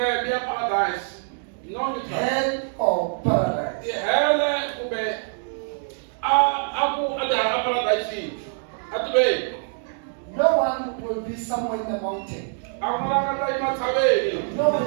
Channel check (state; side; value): silent; left; digital silence